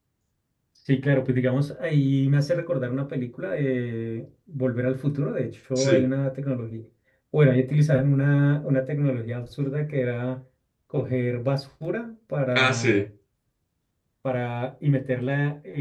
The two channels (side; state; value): both; identical; correlation 1.00